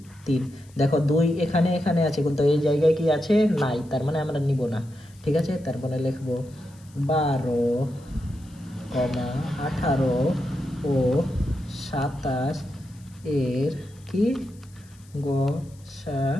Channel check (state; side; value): noise; left; hiss, 28 dB below the sound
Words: 3। দেখো 2 এখানে এখানে আছে, কিন্তু এই জায়গায় কি আছে নাই, তার মানে আমরা নিব না, ঠিক আছে। তারপরে লিখবো 12, 18 ও 27 এর কি